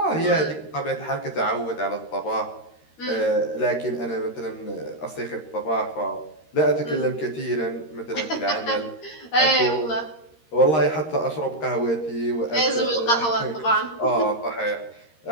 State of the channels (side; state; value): right; late; 13 ms